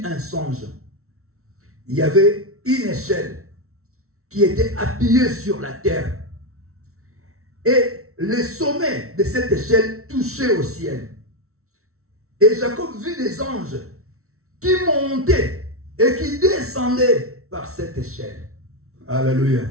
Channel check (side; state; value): left; late; 0.63 ms